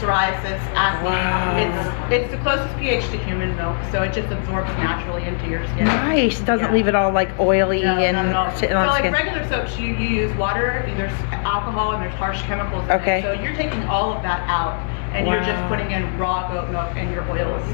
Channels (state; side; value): silent; right; digital silence